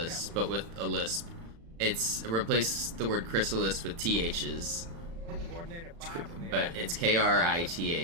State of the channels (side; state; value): left; late; 36 ms